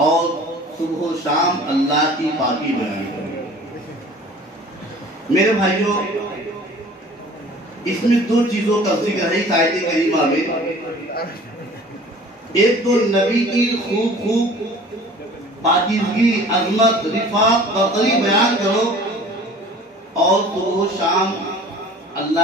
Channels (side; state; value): both; normal; correlation 0.46